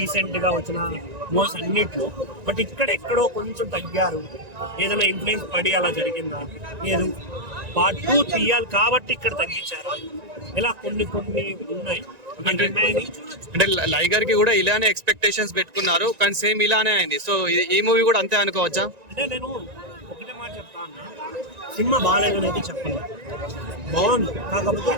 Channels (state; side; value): late; left; 1.9 ms